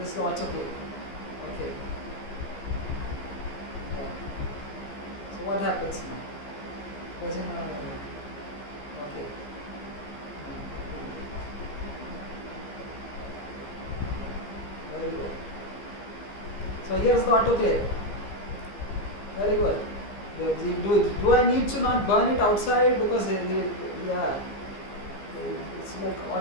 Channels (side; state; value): right; late; 15 ms